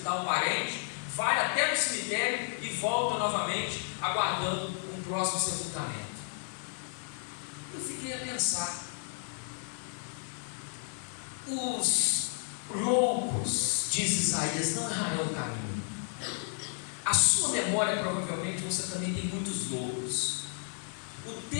um parente, vai até no cemitério e volta novamente, aguardando um próximo sepultamento. Eu fiquei a pensar: os loucos, diz Isaías, não errarão o caminho. A sua memória, provavelmente, você também tem muitos loucos. O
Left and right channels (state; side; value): silent; right; 56 dB below the other